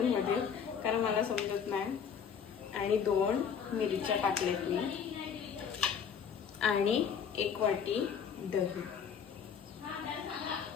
मध्ये, कारण मला समजत नाही। आणि 2 मिरच्या टाकल्यात मी, आणि 1 वाटी दही।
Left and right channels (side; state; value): right; quieter; 7.2 dB